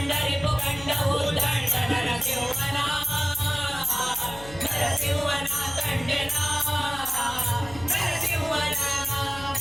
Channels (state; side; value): noise; left; hum, 17 dB below the sound